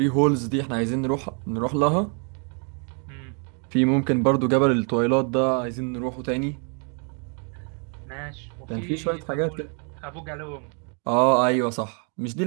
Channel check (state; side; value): quieter; left; 39.1 dB